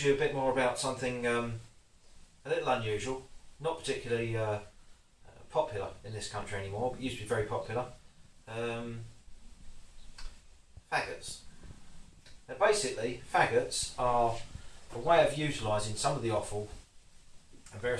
you a bit more about something a little unusual, not particularly popular in this country anymore, but used to be very popular. Faggots. Now basically, faggots are a way of utilising some of the offal and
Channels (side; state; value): both; identical; correlation 1.00